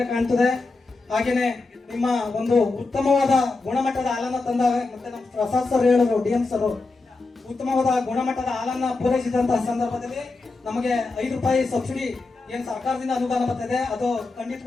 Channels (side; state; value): right; quieter; 3.6 dB